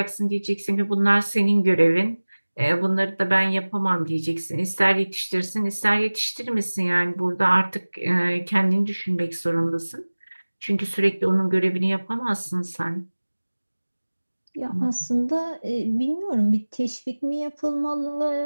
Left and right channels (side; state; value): both; inverted; correlation -1.00